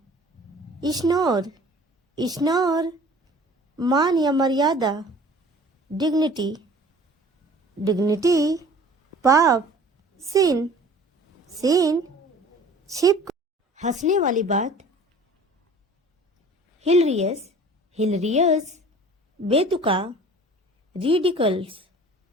इग्नोर, इश्नोर मान या मर्यादा, डिग्निटी, डिग्निटी, पाप, सिन, सिन, छिप हंसने वाली बात, हिलरियस, हिलरियस, बेतुका, रिडिकल्स,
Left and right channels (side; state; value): both; normal; correlation 0.47